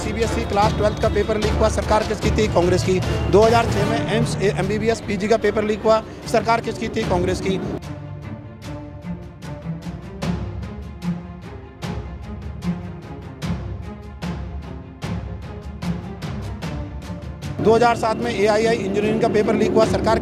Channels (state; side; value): identical; both; correlation 1.00